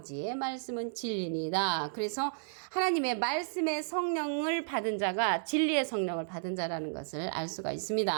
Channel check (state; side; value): silent; left; digital silence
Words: 말씀은 진리니다. 그래서 하나님의 말씀의 성령을 받은 자가 진리의 성령을 받은 자라는 것을 알 수가